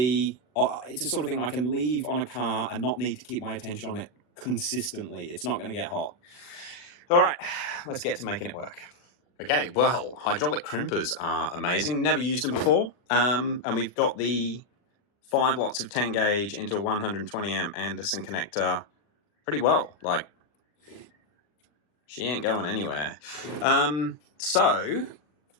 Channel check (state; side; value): late; right; 40 ms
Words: it's a sort of thing I can leave on a car and not need to keep my attention on it consistently. It's not going to get hot. All right, let's get to making it work. Okay, well, hydraulic crimpers are amazing. Never used them before. And we've got the 5 lots of 10 gauge into a 120 amp Anderson connector pretty well. Like, she ain't going anywhere. So